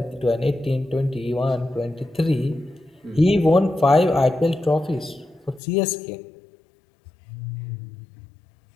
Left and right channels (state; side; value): drops out; right; at 5.6 s